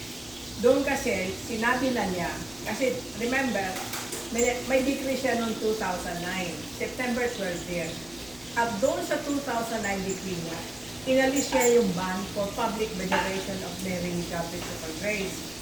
2015. Doon kasi, sinabi na niya, kasi remember, may decree siya noong 2009, September 12 din. At doon sa 2009 decree niya, inalis niya yung ban for public veneration of Mary Mediatrix of Our Grace.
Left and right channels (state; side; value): noise; left; rumble, 22 dB below the sound